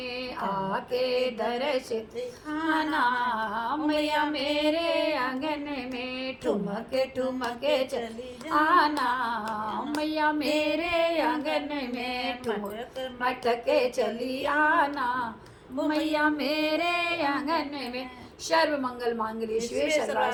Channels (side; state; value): both; identical; correlation 1.00